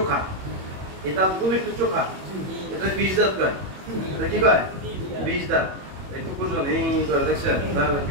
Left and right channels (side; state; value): left; late; 22 ms